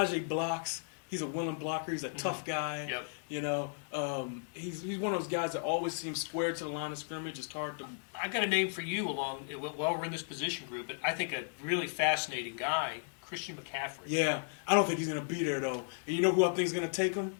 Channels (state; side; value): silent; right; digital silence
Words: blocks. He's a willing blocker. He's a tough guy. Yep. You know, he's one of those guys that always seems square to the line of scrimmage. It's hard to. I got a name for you while we're in this position group, but I think a really fascinating guy, Christian McCaffrey. Yeah, I don't think he's going to be there though. And you know who I think is going to take him?